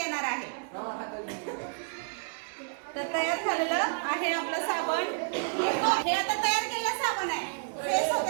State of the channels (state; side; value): silent; left; 58 dB below the other